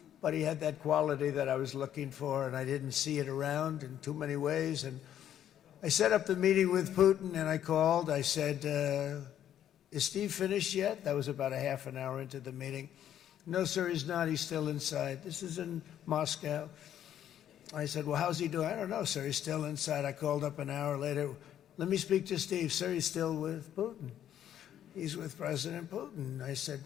but he had that quality that I was looking for, and I didn't see it around in too many ways. And I set up the meeting with Putin, and I called. I said, is Steve finished yet? That was about a half an hour into the meeting. No, sir, he's not. He's still inside. This is in Moscow. I said, well, how's he doing? I don't know, sir. He's still inside. I called up an hour later. Let me speak to Steve. Sir, he's still with Putin. He's with President Putin. I said,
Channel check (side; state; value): right; quieter; 10.6 dB